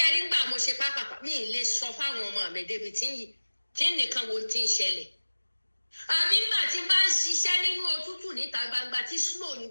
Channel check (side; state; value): both; inverted; correlation -1.00